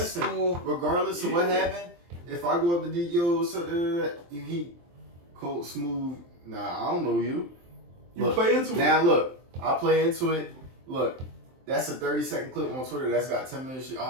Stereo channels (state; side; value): late; left; 23 ms